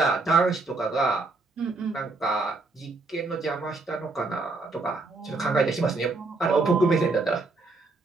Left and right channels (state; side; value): quieter; left; 3.5 dB